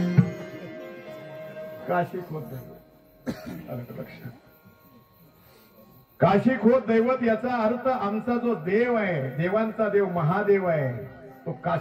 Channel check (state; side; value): identical; both; correlation 1.00